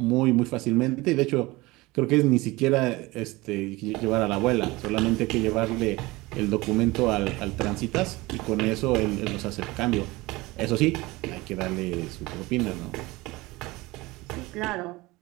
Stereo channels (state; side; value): quieter; left; 21.3 dB